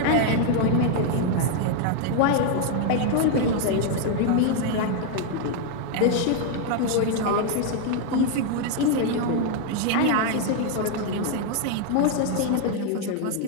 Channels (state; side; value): different; both; correlation 0.00